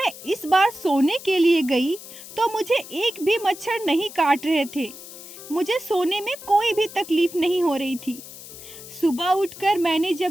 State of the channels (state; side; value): noise; left; hiss, 15 dB below the sound